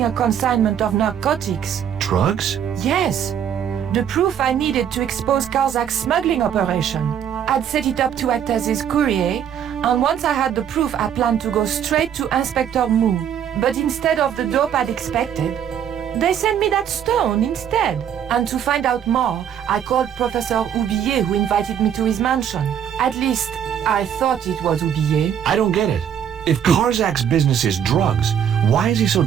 a consignment of narcotics. Drugs? Yes. The proof I needed to expose Karzak's smuggling operation. I'd set it up to act as his courier, and once I had the proof, I planned to go straight to Inspector Mou. But instead of the dope I'd expected, they sent me that stone instead. And to find out more, I called Professor Oublier, who invited me to his mansion. At least, I thought it was Oublier. I don't get it. If Karzak's business is drugs, why is he so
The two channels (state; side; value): quieter; left; 9.0 dB